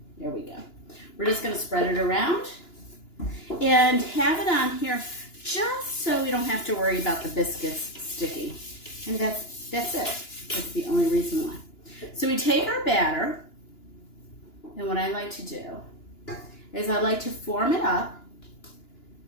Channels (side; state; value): right; late; 2.9 ms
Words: There we go. We're just going to spread it around and have it on here just so we don't have to worry about the biscuits sticking. And that's it. That's the only reason why. So we take our batter, and what I like to do is I like to form it up.